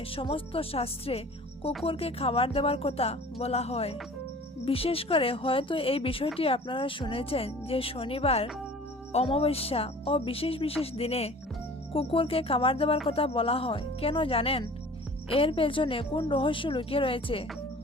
সমস্ত শাস্ত্রে কুকুরকে খাবার দেওয়ার কথা বলা হয়। বিশেষ করে হয়তো এই বিষয়টি আপনারা শুনেছেন যে শনিবার, অমাবস্যা ও বিশেষ বিশেষ দিনে কুকুরকে খাবার দেওয়ার কথা বলা হয়। কেন জানেন? এর পেছনে কোন রহস্য লুকিয়ে রয়েছে?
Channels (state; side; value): normal; both; correlation 0.45